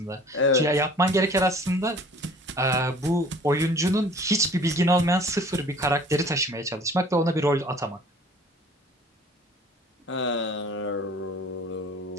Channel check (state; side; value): normal; both; correlation 0.49